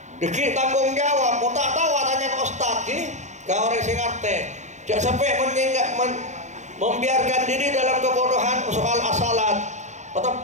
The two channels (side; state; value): left; late; 0.34 ms